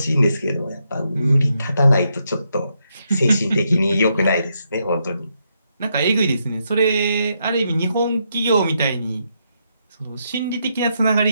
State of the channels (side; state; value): both; inverted; correlation -0.80